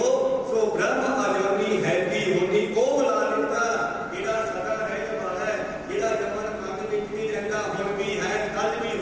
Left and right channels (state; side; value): identical; both; correlation 1.00